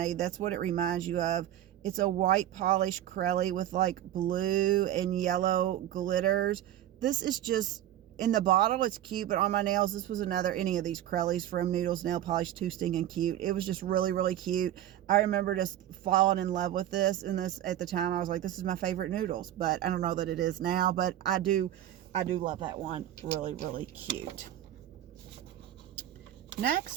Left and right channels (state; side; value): quieter; left; 12.4 dB